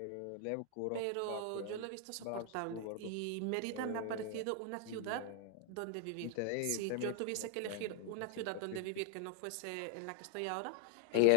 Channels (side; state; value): both; different; correlation 0.00